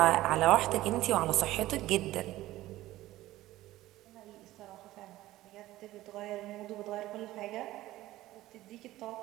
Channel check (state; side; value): quieter; left; 16.1 dB